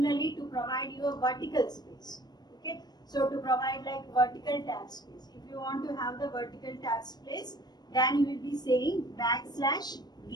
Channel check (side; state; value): right; late; 0.20 ms